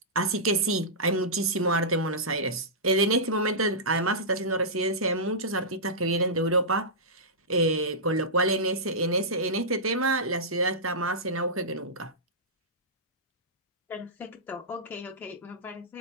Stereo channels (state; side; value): normal; both; correlation -0.15